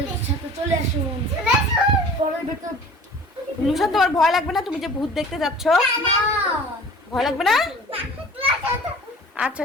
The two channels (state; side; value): normal; both; correlation 0.45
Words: সাথে চলে আসুন। পরের ভিতর লুশান তোমার ভয় লাগবে না? তুমি যে ভূত দেখতে যাচ্ছ ভয় লাগবে না? আচ্ছা